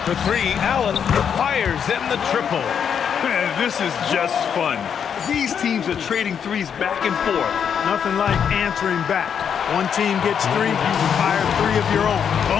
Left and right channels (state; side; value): quieter; right; 7.7 dB